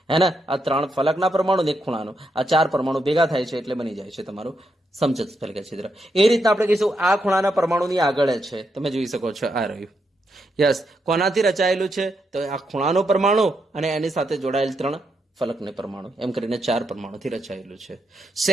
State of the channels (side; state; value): both; normal; correlation 0.81